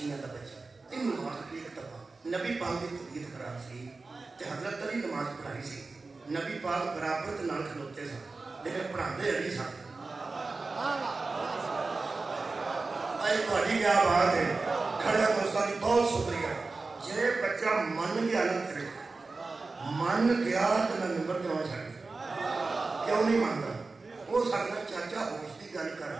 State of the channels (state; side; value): quieter; left; 3.8 dB